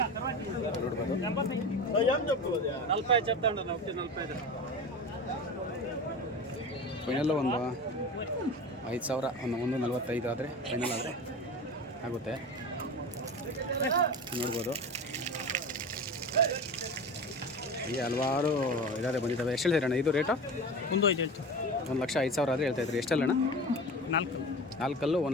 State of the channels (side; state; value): both; normal; correlation 0.30